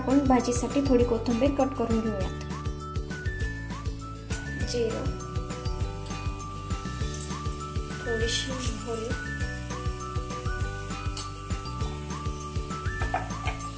भाजीसाठी थोडी कोथिंबीर कट करून घेऊयात। जिरं, थोडीशी मोहरी,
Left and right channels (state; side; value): identical; both; correlation 1.00